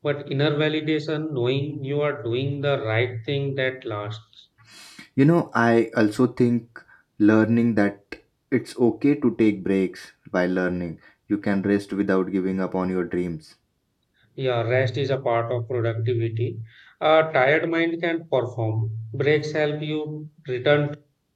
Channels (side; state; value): both; identical; correlation 1.00